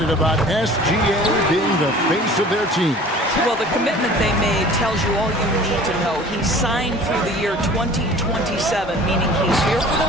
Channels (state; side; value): normal; both; correlation 0.45